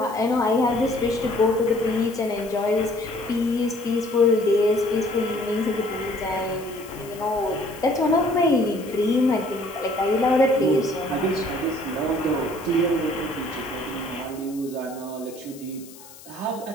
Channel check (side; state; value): left; noise; hiss, 20 dB below the sound